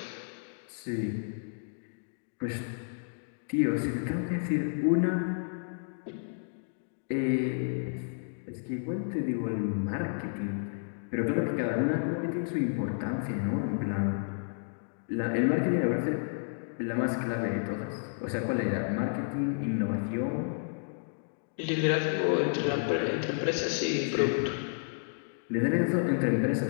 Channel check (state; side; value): silent; right; digital silence